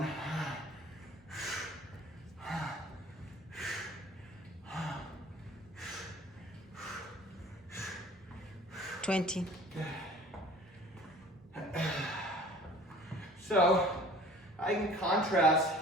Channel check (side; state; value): both; normal; correlation 0.48